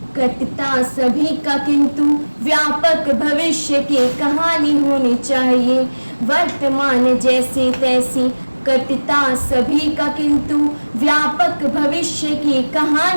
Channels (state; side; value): inverted; both; correlation -1.00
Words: कटता सभी का, किंतु व्यापक भविष्य की कहानी होनी चाहिए। वर्तमान जैसे तैसे कटता सभी का, किंतु व्यापक भविष्य की